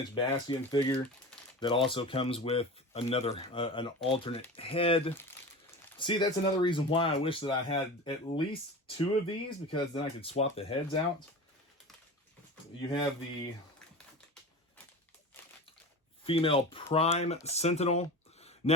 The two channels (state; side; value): normal; both; correlation 0.31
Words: Bastion figure that also comes with another an alternate head. See, that's another reason why I wish that I had at least 2 of these, because then I could swap the heads out. You have the female Prime Sentinel.